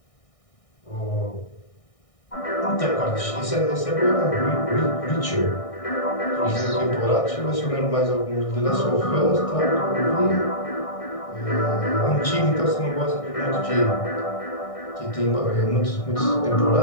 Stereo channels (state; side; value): late; right; 1.6 ms